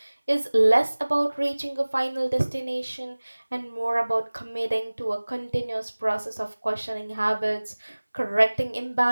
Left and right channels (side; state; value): both; inverted; correlation -1.00